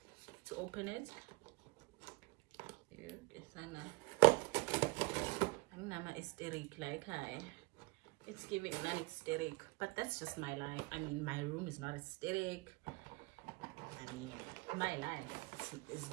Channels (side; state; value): left; quieter; 24.5 dB